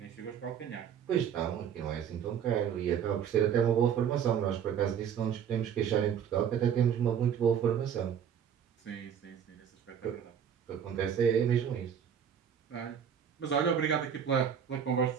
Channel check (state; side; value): quieter; left; 8.2 dB